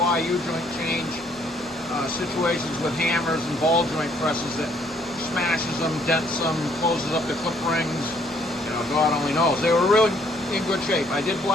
U-joint change situations with hammers and ball joint presses that smashes them, dents them, closes up the clip rings. God only knows. They were really in good shape. I did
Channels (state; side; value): normal; both; correlation 0.65